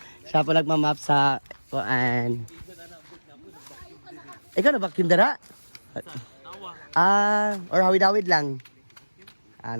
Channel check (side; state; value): both; inverted; correlation -1.00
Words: siya po nagmamap sa kuan. Ikaw na vacuum dara? Or hawid-hawid lang.